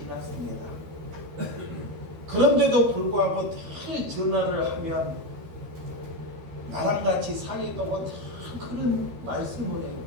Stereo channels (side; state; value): left; late; 13 ms